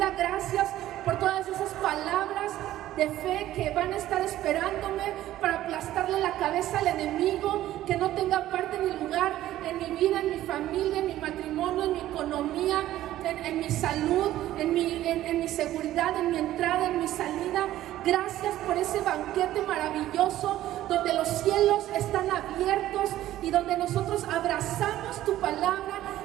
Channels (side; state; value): left; quieter; 13.9 dB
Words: Gracias por todas esas palabras de fe que van a estar esperándome para aplastarle la cabeza al enemigo, que no tenga parte ni lugar en mi vida, en mi familia, en mi matrimonio, en mi economía, en mi salud, en mi seguridad, en mi entrada, en mi salida. Gracias por ese banquete maravilloso donde los cielos están abiertos y donde nosotros abrazamos tu palabra